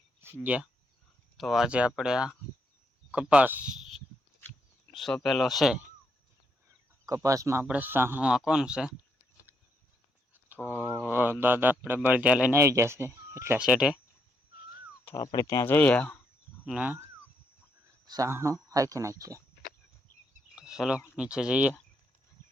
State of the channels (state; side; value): normal; both; correlation 0.77